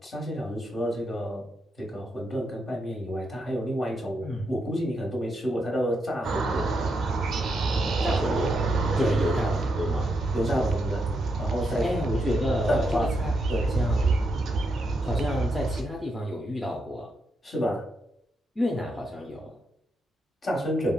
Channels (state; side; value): normal; both; correlation 0.81